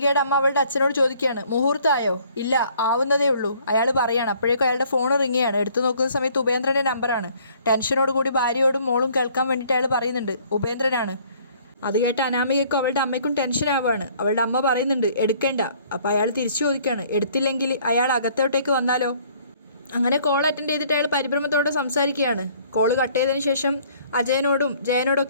അമ്മ അവളുടെ അച്ഛനോട് ചോദിക്കുകയാണ്, മുഹൂർത്തമായോ? ഇല്ല, ആവുന്നതേ ഉള്ളൂ. അയാൾ പറയാണ്. അപ്പോഴേക്കും അയാളുടെ ഫോൺ റിങ്ങുകയാണ്. എടുത്തു നോക്കുന്ന സമയത്ത് ഉപേന്ദ്രൻ്റെ നമ്പറാണ്. ടെൻഷനോട് കൂടി ഭാര്യയോടും മോളും കേൾക്കാൻ വേണ്ടിയിട്ട് അയാൾ പറയുന്നുണ്ട്, ഉപേന്ദ്രനാണ്. അത് കേട്ട് അനാമികയ്ക്കും അവളുടെ അമ്മയ്ക്കും ടെൻഷൻ ആവുകയാണ്. അവളുടെ അമ്മ പറയുന്നുണ്ട് എടുക്കേണ്ട. അപ്പോൾ അയാൾ തിരിച്ചു ചോദിക്കുകയാണ്, എടുത്തില്ലെങ്കിൽ അയാൾ അകത്തോട്ടേക്ക് വന്നാലോ? അങ്ങനെ കോൾ അറ്റൻഡ് ചെയ്തിട്ട് അയാൾ പരിഭ്രമത്തോടെ സംസാരിക്കുകയാണ്. കോള് കട്ട് ചെയ്തതിന് ശേഷം അജയനോടും ജയനോടും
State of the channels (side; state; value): both; inverted; correlation -0.59